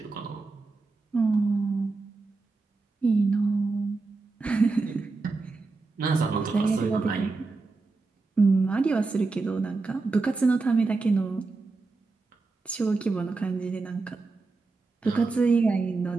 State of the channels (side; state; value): left; quieter; 3.8 dB